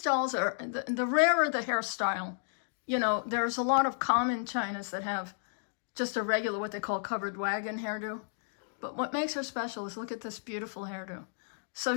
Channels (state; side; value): silent; right; digital silence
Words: dolls are, the rarer the hairstyle, you know, there's a lot of common chinas that have just a regular, what they call covered wagon hairdo. But what makes her special is look at this beautiful hairdo. So